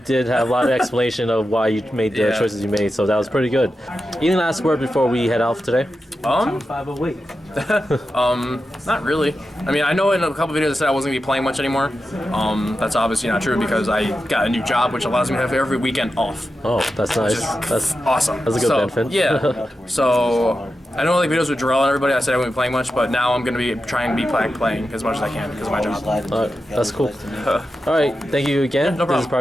have a lot of explanation of why you made the choices you made, so that was pretty good. Any last word before we head off today? Not really. I mean, I know in a couple videos I said I wasn't going to be playing much anymore. That's obviously not true because I got a new job, which allows me to have every weekend off. Oh, that's nice. That's awesome. That's a good benefit. Yeah. So, I know like videos with Jarrell and everybody, I said I wouldn't be playing much, but now I'm going to be trying to be playing as much as I can because of my job. Alright, that's cool. Alright, thank you again. No problem. This is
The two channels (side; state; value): both; normal; correlation 0.90